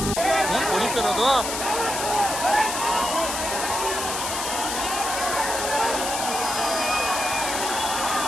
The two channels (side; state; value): left; noise; hiss, 3 dB below the sound